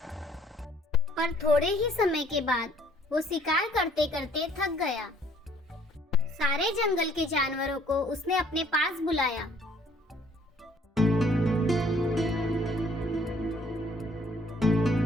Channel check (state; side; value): normal; both; correlation 0.60